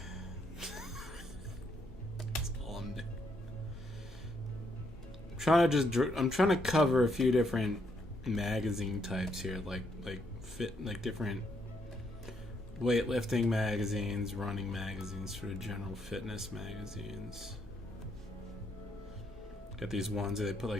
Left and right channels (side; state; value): both; normal; correlation 0.74